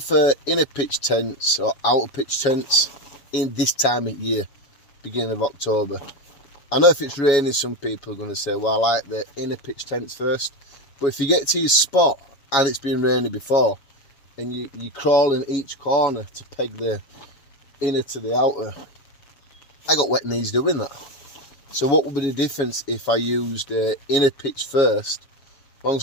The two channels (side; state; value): right; late; 7.2 ms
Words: inner pitch tents or outer pitch tents in this time of year, beginning of October? I know if it's raining, some people are going to say, well, I like the inner pitch tents first. But if you get to your spot and it's been raining before, and you crawl in each corner to peg the inner to the outer, I got wet knees doing that. So what would be the difference if I used inner pitch first? As long